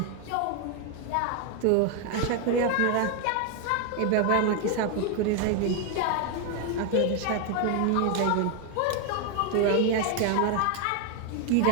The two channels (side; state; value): both; different; correlation 0.01